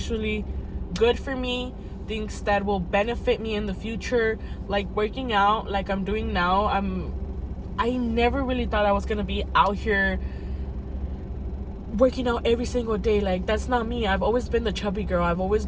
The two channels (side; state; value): both; identical; correlation 1.00